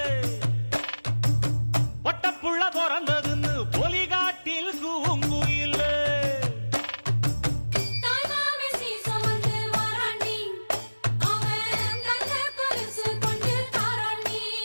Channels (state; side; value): inverted; both; correlation -1.00